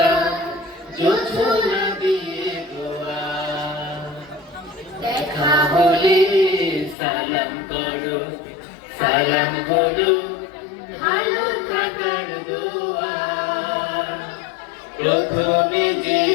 জোছনা দিয়ে দোয়া। দেখা হলে সালাম করো, সালাম হলো ভালো থাকার দোয়া। প্রথমে যে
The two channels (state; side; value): drops out; right; at 7.0 s